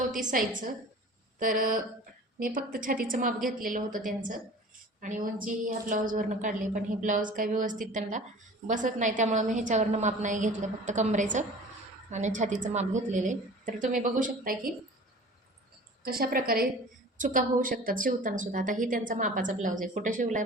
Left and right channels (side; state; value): both; normal; correlation 0.42